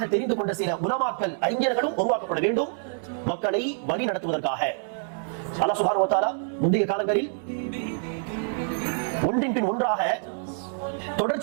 தெரிந்து கொண்ட சில உலமாக்கள் அறிஞர்களும் உருவாக்கப்பட வேண்டும் மக்களை வழி நடத்துவதற்காக. அல்லாஹ் சுப்ஹானஹு வ தஆலா முந்தைய காலங்களில் ஒன்றின் பின் ஒன்றாக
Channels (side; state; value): left; silent; 61 dB below the other